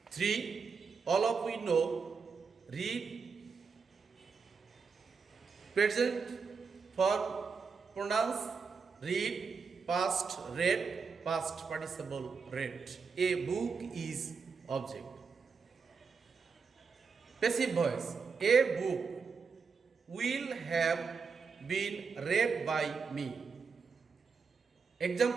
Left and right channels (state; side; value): quieter; left; 5.3 dB